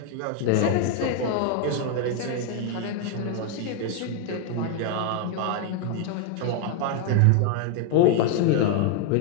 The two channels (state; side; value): different; both; correlation 0.00